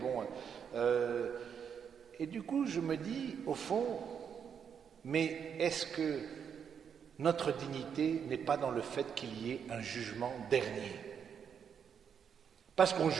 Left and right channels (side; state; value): left; quieter; 7.5 dB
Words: et du coup, je me dis, au fond, mais est-ce que notre dignité n'est pas dans le fait qu'il y ait un jugement dernier? Parce qu'on